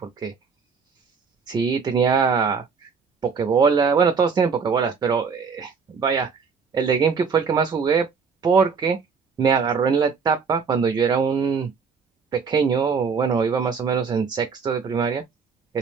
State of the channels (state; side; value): quieter; left; 5.6 dB